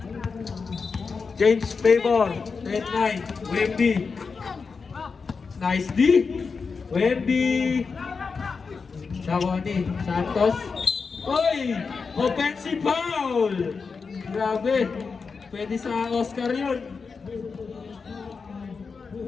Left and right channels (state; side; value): quieter; right; 5.0 dB